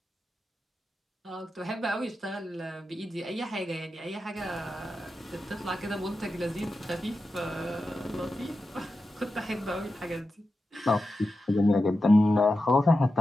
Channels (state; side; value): normal; both; correlation 0.91